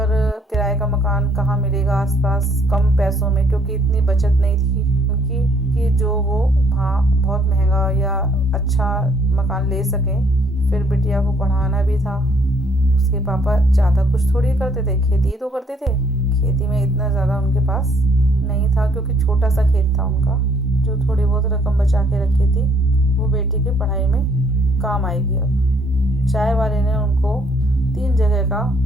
किराए का मकान कहाँ मिलेगा आसपास कम पैसों में, क्योंकि इतनी बचत नहीं थी उनकी कि जो वो वहाँ बहुत महंगा या अच्छा मकान ले सकें। फिर बिटिया को पढ़ाना भी था। उसके पापा ज़्यादा कुछ थोड़ी करते थे, खेती ही तो करते थे। खेती में इतना ज़्यादा उनके पास नहीं था, क्योंकि छोटा सा खेत था उनका। जो थोड़ी बहुत रकम बचा के रखी थी वो बेटी की पढ़ाई में काम आएगी। अब चाय वाले ने उनको 3 जगह का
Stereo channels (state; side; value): normal; both; correlation 0.65